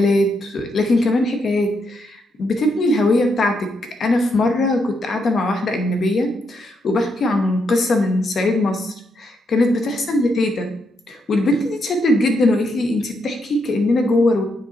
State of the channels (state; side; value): normal; both; correlation 0.79